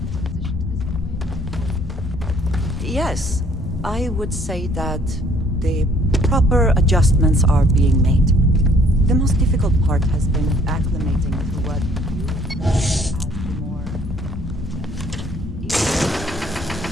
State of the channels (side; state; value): both; normal; correlation 0.60